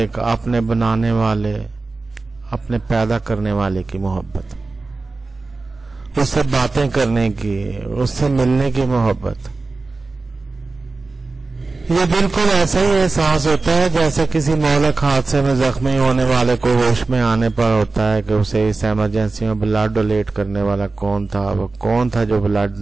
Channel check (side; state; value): left; quieter; 3.6 dB